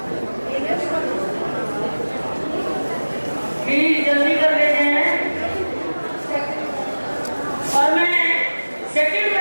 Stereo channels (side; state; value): both; inverted; correlation -1.00